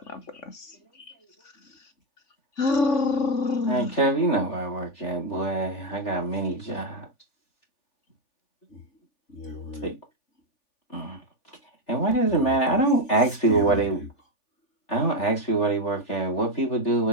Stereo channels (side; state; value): right; late; 3.4 ms